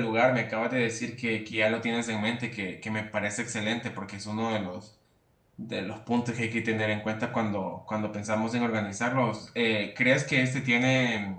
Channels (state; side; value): identical; both; correlation 1.00